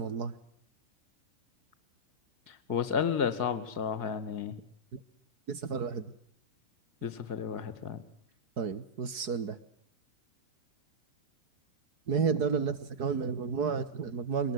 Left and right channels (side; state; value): left; late; 4.7 ms